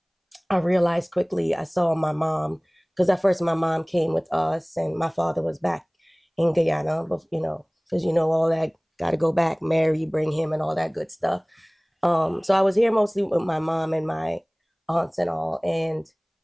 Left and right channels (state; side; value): identical; both; correlation 1.00